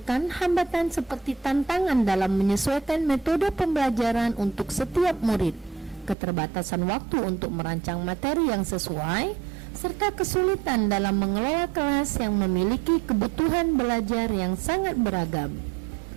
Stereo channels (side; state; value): left; drops out; at 6.2 s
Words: hambatan seperti tantangan dalam menyesuaikan metode pembelajaran untuk setiap murid, keterbatasan waktu untuk merancang materi yang sesuai, serta kesulitan dalam mengelola kelas yang memiliki kebutuhan belajar yang sangat beragam.